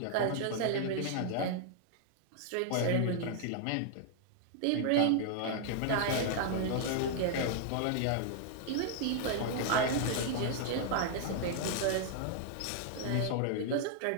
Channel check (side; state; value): both; different; correlation -0.01